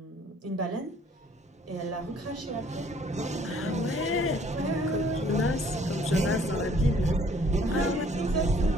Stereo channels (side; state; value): both; normal; correlation 0.59